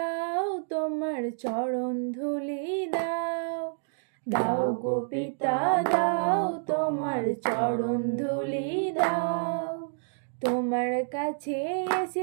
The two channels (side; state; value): left; silent; digital silence